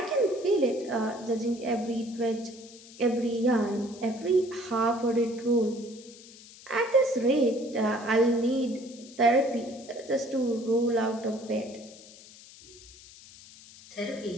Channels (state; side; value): noise; left; hiss, 20 dB below the sound